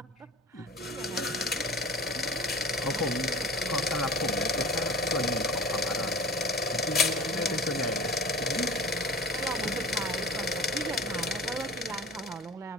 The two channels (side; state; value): both; normal; correlation 0.38